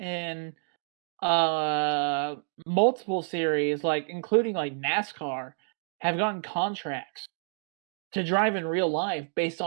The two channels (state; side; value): silent; left; digital silence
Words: multiple series, like including like NASCAR, have gotten contracts to drive in real life based